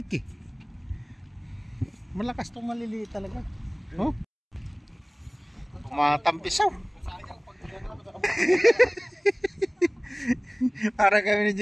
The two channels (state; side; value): identical; both; correlation 1.00